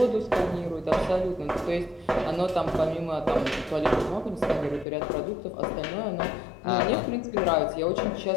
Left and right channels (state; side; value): drops out; right; at 4.9 s